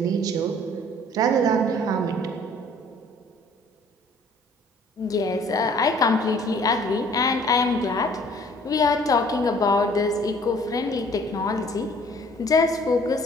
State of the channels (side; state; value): both; normal; correlation 0.55